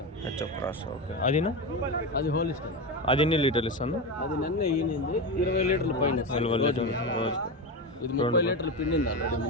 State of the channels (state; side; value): normal; both; correlation 0.18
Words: ఓకే. అదినా? అది హోలిస్టిన్. అది ఎన్ని లీటర్లు ఇస్తాను? అది నిన్న ఈనింది 20 లీటర్లు పైన. 20 లీటర్లు రోజుకి. ఇది 30 లీటర్లు పిండింది ఆల్రెడీ.